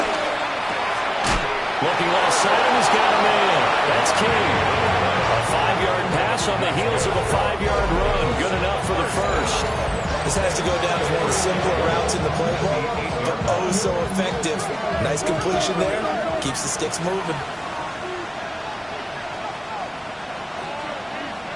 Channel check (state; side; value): identical; both; correlation 1.00